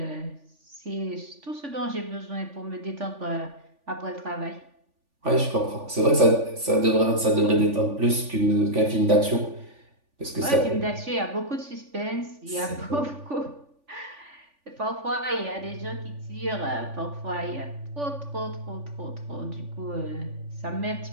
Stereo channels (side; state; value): left; late; 3.5 ms